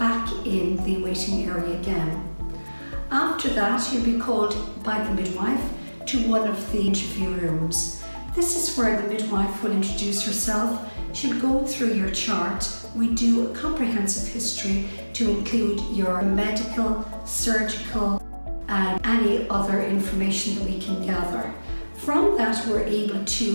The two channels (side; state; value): both; inverted; correlation -1.00